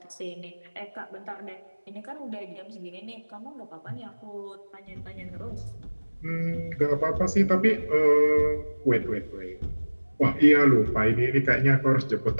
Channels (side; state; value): both; inverted; correlation -1.00